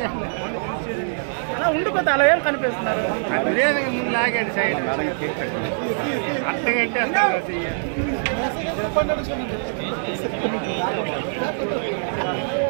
ఉండిపోతే అలా ఏం కనిపిస్తున్నారు బిర్యానీ ముందు లాగాడు సైడ్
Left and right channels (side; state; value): left; silent; digital silence